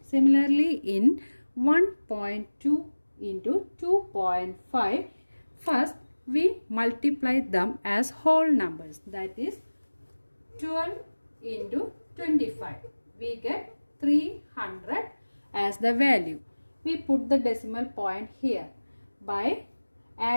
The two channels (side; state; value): both; inverted; correlation -1.00